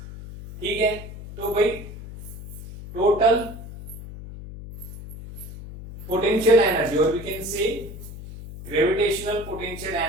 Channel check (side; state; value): left; noise; hum, 12 dB below the sound